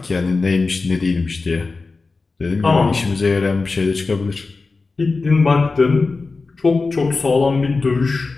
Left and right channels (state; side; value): quieter; right; 4.0 dB